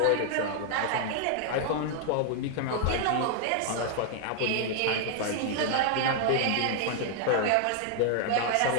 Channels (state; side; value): different; both; correlation 0.00